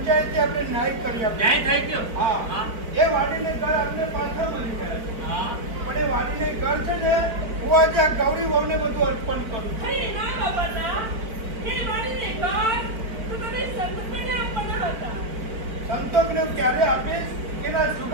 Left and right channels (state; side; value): late; left; 4.6 ms